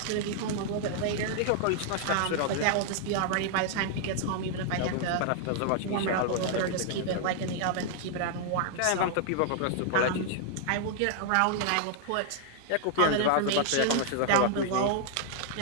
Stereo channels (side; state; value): both; different; correlation 0.00